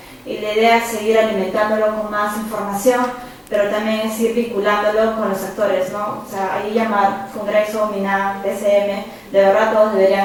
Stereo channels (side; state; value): both; identical; correlation 1.00